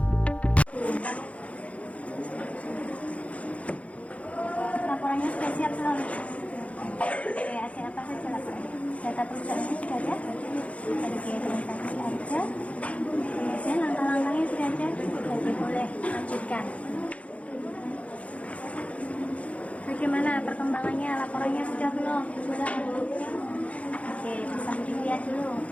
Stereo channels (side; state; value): right; late; 0.064 ms